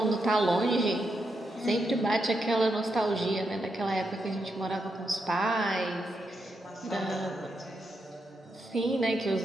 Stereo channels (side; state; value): both; normal; correlation 0.83